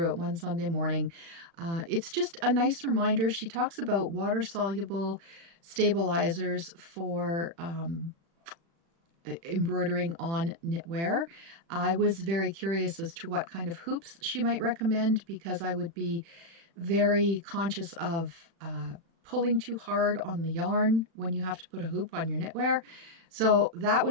it one Sunday morning, it's just a nice reminder. She talks about water-soluble stabilizers for embroidering on knitwear. I was very curious as to what kind of hoops she might recommend, because I would be very conscious of pulling too hard on the yarn when you have to put a hoop on your knitwear. So that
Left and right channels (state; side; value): late; left; 36 ms